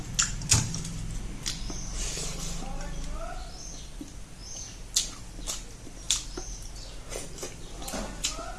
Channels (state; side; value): identical; both; correlation 1.00